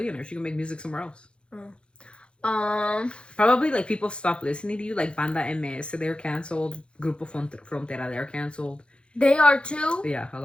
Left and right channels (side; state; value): right; late; 0.056 ms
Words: She can make music somewhere else. Oh. Probably like people stop listening to you, like Banda MS, they're canceled. Grupo Frontera, they're canceled. They are too? Yeah, a